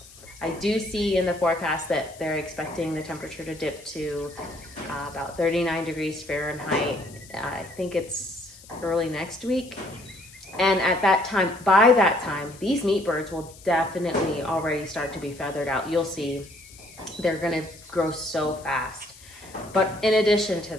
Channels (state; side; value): noise; left; hiss, 21 dB below the sound